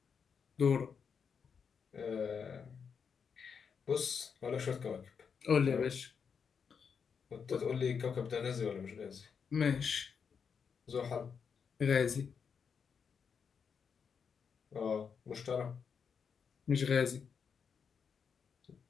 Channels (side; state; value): right; quieter; 6.4 dB